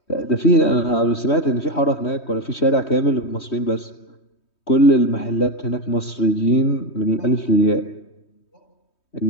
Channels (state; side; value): late; right; 3.2 ms